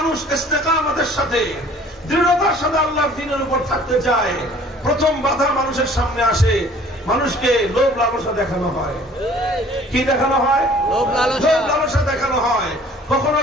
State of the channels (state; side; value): normal; both; correlation 0.52